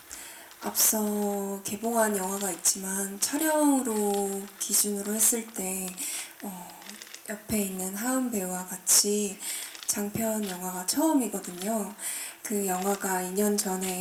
앞서 개봉한 영화가 있지만 촬영으로 기준으로 했을 때 옆에 있는 하은 배우와 같이 장편 영화가 처음이거든요. 그 영화가 2년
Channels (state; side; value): identical; both; correlation 1.00